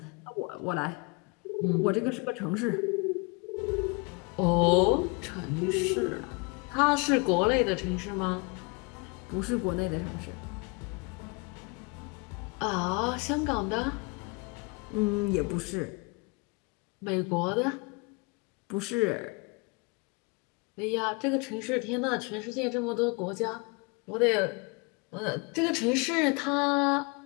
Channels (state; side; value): quieter; right; 29.8 dB